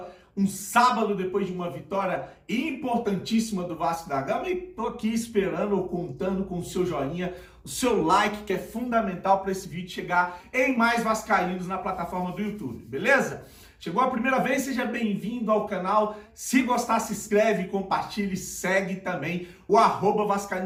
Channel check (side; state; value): both; identical; correlation 1.00